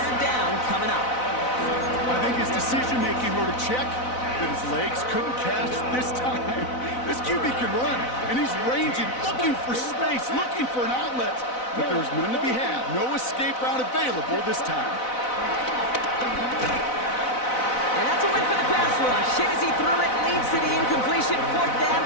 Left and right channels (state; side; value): late; right; 4.0 ms